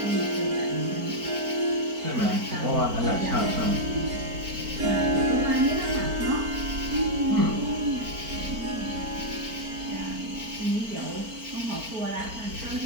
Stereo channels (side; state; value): left; late; 4.4 ms